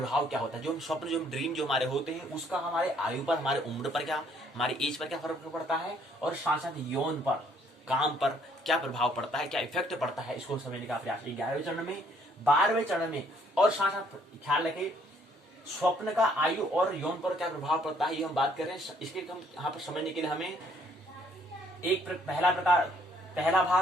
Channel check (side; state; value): both; normal; correlation 0.65